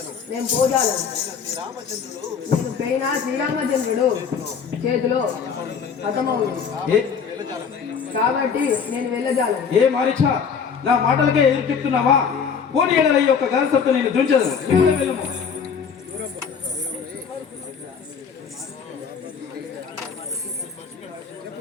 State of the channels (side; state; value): right; quieter; 6.5 dB